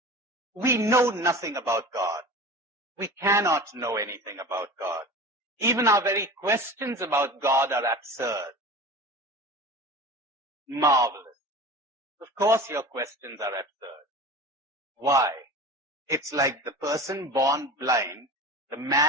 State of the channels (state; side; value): normal; both; correlation 0.35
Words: we know nothing about God. We cannot know anything about God. Even our very questions about God are absurd. Marvelous. Of course your questions are absurd. Why? It's like the person born blind, the